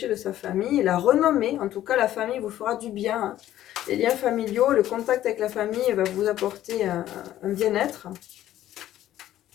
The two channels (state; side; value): quieter; right; 13.0 dB